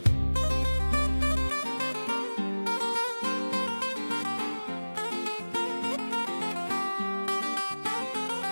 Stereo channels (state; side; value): inverted; both; correlation -1.00